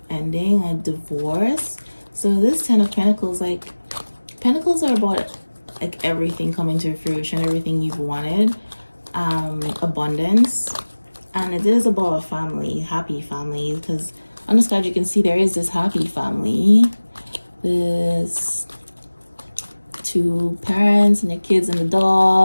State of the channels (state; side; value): inverted; both; correlation -1.00